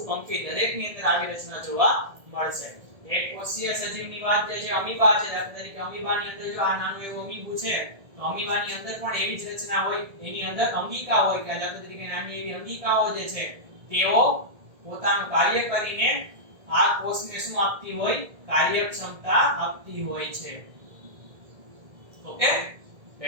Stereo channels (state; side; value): late; left; 1.7 ms